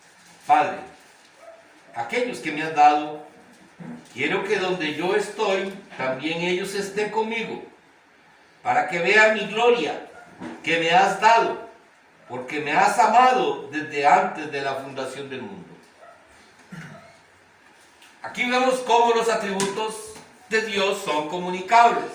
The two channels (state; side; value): identical; both; correlation 1.00